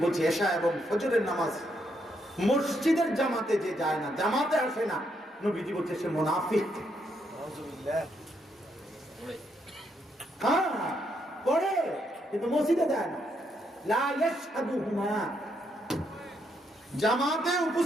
বলছে এশা এবং ফজরের নামাজ মসজিদের জামাতে যে যায় না, জামাতে আসে না, নবীজি বলছে সে মুনাফিক। হ্যাঁ পড়ে কিন্তু মসজিদে যায় না। লা ইয়াশহাদুহুমা, জামাতে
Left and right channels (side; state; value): both; normal; correlation 0.77